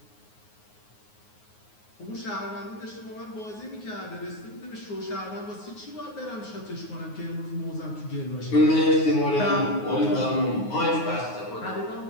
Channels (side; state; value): right; late; 9.5 ms